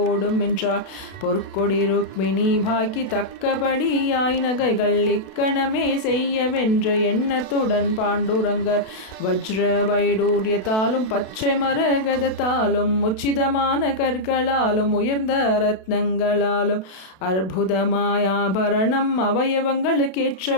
என்றார், பொற்கொடி ருக்மிணி பாக்கி தக்கபடியாய் நகைகள் இக்கணமே செய்யவென்ற எண்ணத்துடன் பாண்டுரங்கர் வஜ்ர வைடூரியத்தாலும் பச்சை மரகதத்தாலும் உச்சிதமான கற்களாலும் உயர்ந்த ரத்னங்களாலும் அற்புதமாய் ஆபரணம்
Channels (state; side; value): late; right; 32 ms